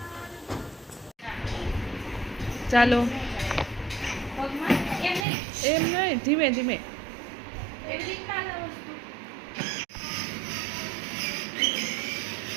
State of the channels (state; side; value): drops out; left; at 5.2 s